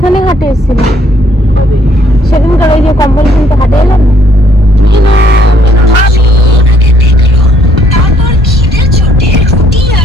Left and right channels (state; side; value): normal; both; correlation 0.66